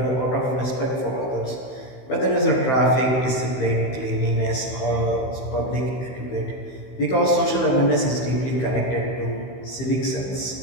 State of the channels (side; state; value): right; late; 15 ms